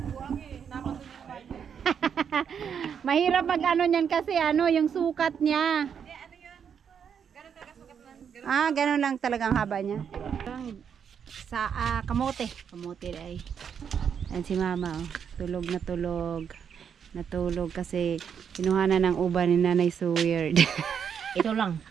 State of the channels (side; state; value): left; quieter; 7.5 dB